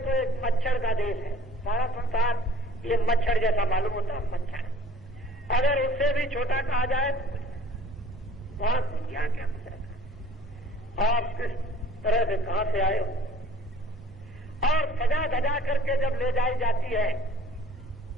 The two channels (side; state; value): both; normal; correlation 0.51